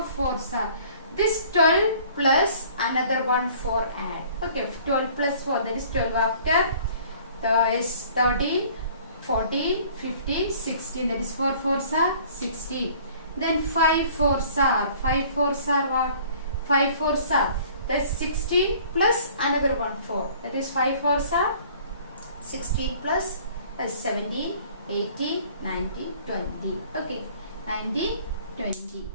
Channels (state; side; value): inverted; both; correlation -0.52